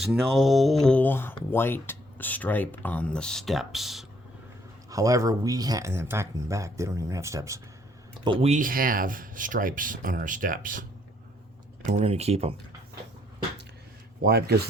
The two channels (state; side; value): normal; both; correlation 0.67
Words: no white stripe on the steps. However, we have, and in fact, in the back, they don't even have steps. But we have stripes on our steps. And we're going to keep them. Why? Because